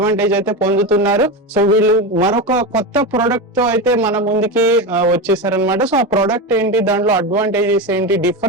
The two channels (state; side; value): normal; both; correlation 0.18